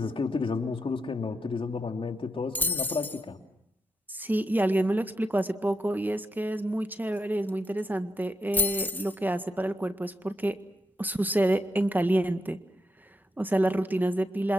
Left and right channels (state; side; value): normal; both; correlation 0.82